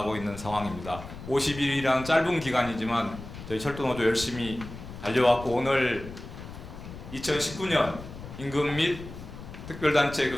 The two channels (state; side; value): noise; left; rumble, 12 dB below the sound